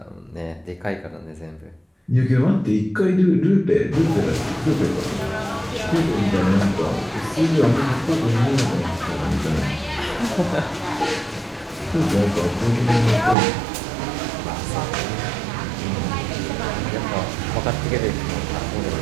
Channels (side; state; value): left; drops out; at 13.4 s